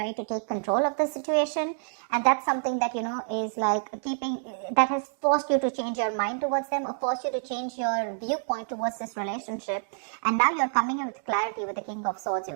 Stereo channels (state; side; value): silent; left; digital silence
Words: to take control of the situation. And that's something that, is like that has forced you to change your mind towards them, or forced you to change your viewpoint towards this relationship. And now you're coming in with clarity with the King of Swords,